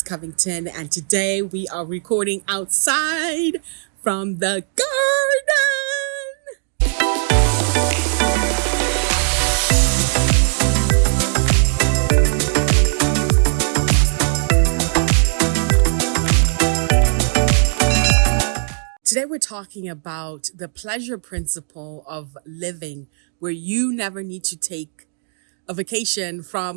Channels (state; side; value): silent; left; digital silence